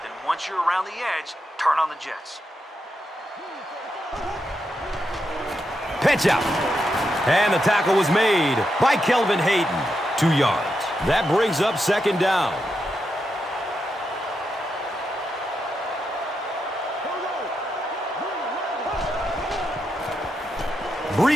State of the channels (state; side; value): normal; both; correlation 0.84